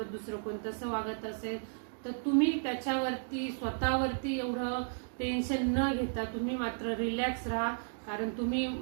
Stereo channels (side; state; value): left; silent; digital silence